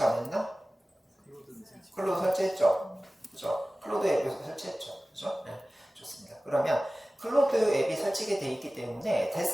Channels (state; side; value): normal; both; correlation 0.97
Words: 안 했나? 클로드 설치했죠? 그죠? 클로드 앱에서 설치했죠? 그죠? 네, 좋습니다. 그러면 클로드 앱이 설치가 되어 있기 때문에